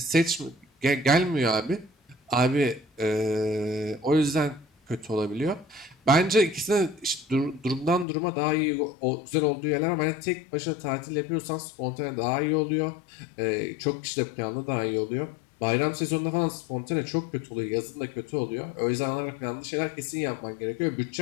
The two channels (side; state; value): right; drops out; at 8.1 s